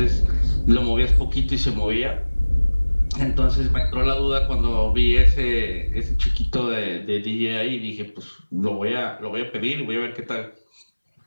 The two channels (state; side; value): inverted; both; correlation -1.00